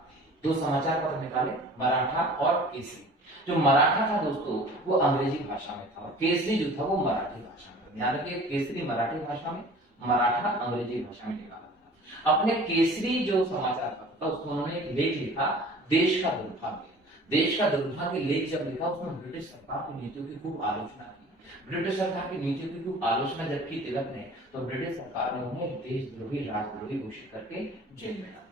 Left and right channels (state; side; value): normal; both; correlation 0.45